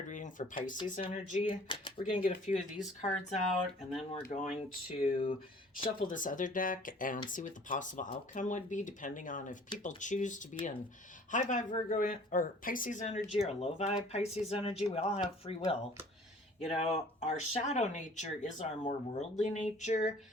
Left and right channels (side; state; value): both; normal; correlation 0.51